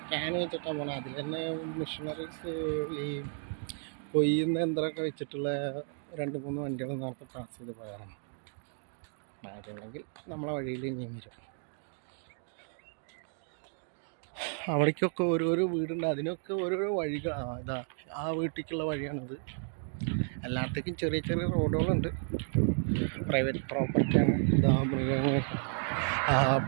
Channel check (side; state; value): left; silent; 56 dB below the other